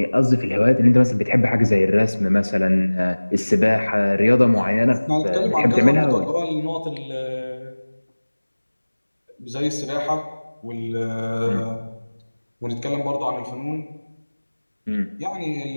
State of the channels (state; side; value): inverted; both; correlation -1.00